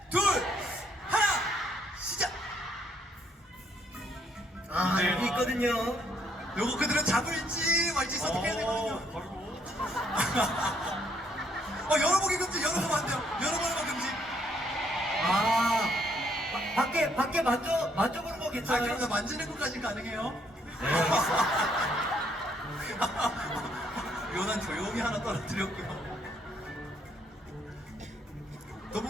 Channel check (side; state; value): both; normal; correlation 0.69